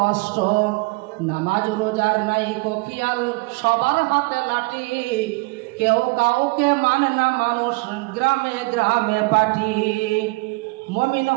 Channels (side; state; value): left; quieter; 26.1 dB